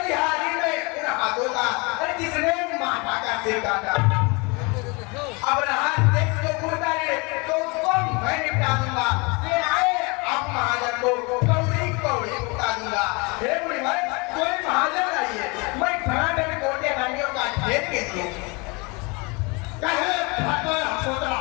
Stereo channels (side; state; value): right; quieter; 28.7 dB